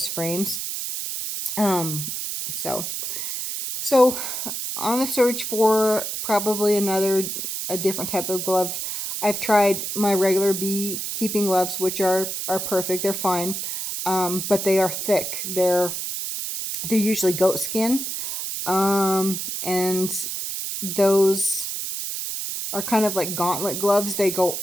frames. So on the search for probably a different type of gloves. I've tried my regular beekeeping gloves, which are perfect. They're fine. But they are thick. They're usually goat skin. And those are kind of like gauntlet gloves. They go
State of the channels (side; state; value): right; noise; hiss, 4 dB below the sound